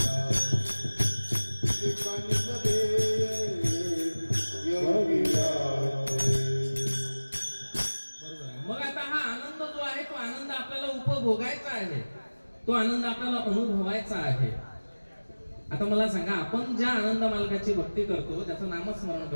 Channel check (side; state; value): both; inverted; correlation -1.00